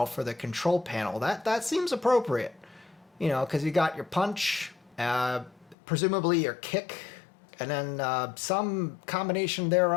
for the control panel. That seems appropriate. You know, because you got your punch, presumably your kick, and then some combination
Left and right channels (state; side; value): drops out; right; at 5.8 s